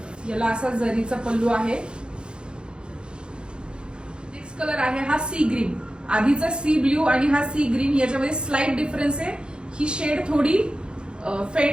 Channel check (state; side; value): late; left; 0.052 ms